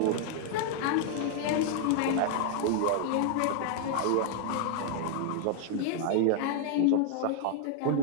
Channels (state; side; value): different; both; correlation -0.01